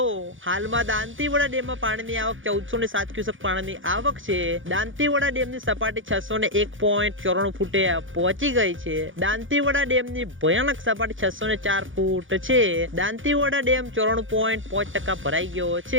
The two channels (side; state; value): left; late; 0.57 ms